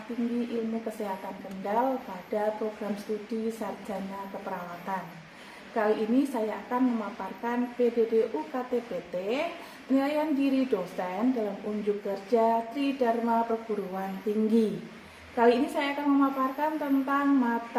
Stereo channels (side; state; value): both; identical; correlation 1.00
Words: Tinggi Ilmu Kesehatan Kendal pada program studi Sarjana Keperawatan. Kali ini saya akan memaparkan PDD UKT-PT, penilaian diri dosen dalam unjuk kerja Tridharma Perguruan Tinggi. Kali ini saya akan memaparkan tentang